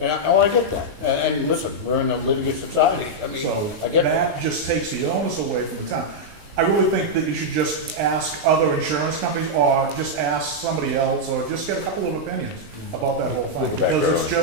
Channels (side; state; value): left; late; 19 ms